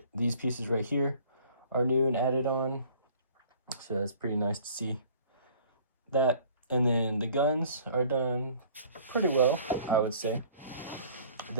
These pieces right here are new and added on, so that's pretty nice to see that. And then the guns are done pretty well, I would say.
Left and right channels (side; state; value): both; inverted; correlation -0.53